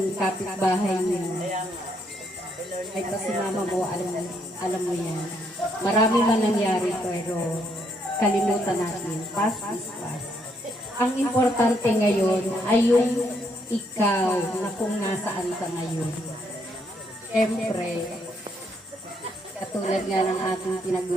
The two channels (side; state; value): both; normal; correlation 0.74